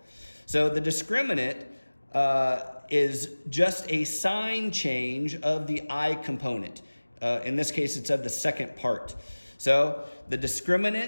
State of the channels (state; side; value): inverted; both; correlation -1.00